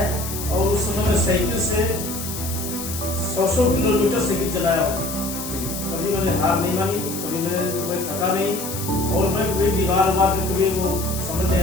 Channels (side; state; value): left; noise; hiss, 8 dB below the sound